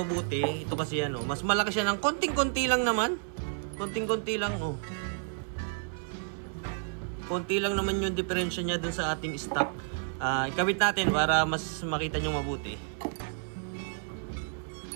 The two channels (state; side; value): silent; left; 57 dB below the other